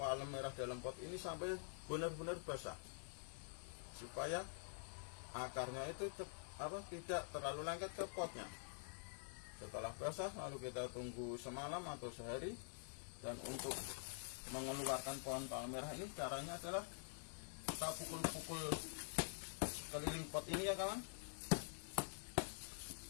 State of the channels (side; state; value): right; silent; digital silence